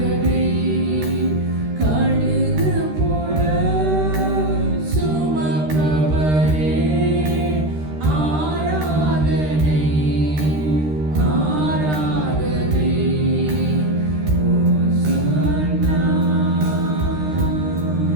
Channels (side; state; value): left; late; 13 ms